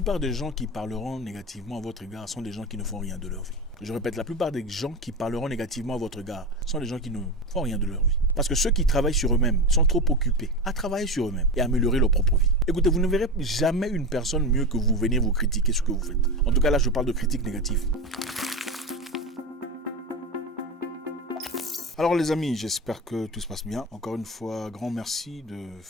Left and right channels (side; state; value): both; normal; correlation 0.22